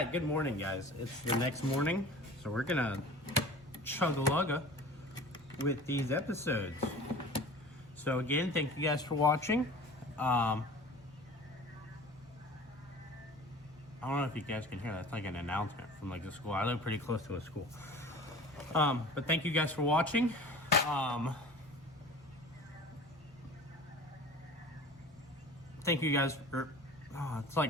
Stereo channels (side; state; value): both; normal; correlation 0.41